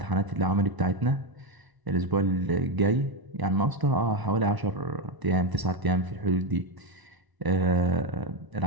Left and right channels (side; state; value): left; late; 1.0 ms